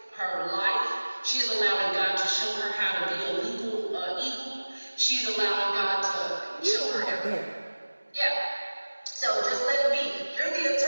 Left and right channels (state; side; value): inverted; both; correlation -1.00